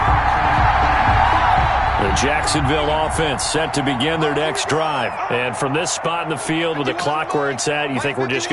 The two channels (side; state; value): both; identical; correlation 1.00